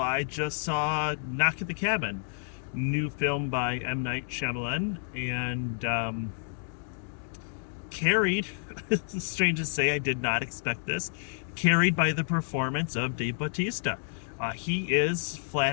just saw Knock at the Cabin, new film by M. Night Shyamalan, and carried, it's strange to say, I did not expect this, carried by the performance of Dave Bautista. He is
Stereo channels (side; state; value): right; silent; digital silence